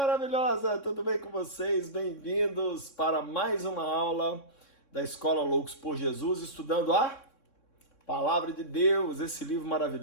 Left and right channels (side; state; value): right; late; 3.6 ms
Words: tudo bem com vocês? Bem-vindos para mais uma aula da Escola Loucos por Jesus, estudando a Palavra de Deus, esse livro